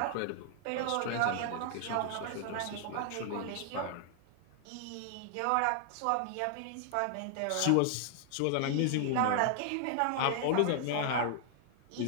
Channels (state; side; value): different; both; correlation 0.00